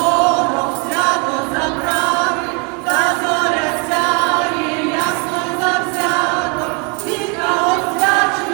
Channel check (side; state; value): left; quieter; 32.0 dB